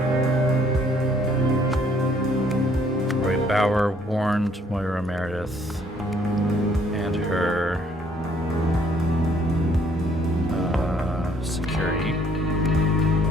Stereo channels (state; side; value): normal; both; correlation 0.64